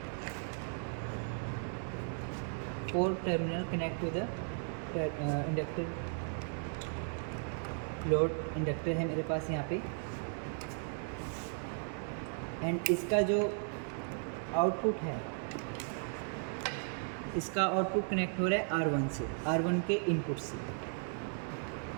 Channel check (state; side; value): silent; left; 54 dB below the other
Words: 4th terminal connect to the inductor, load inductor है मेरे पास यहाँ पे, एंड इसका जो आउटपुट है, इसका आउटपुट कनेक्ट हो रहा है R1 से, R1 के इनपुट से।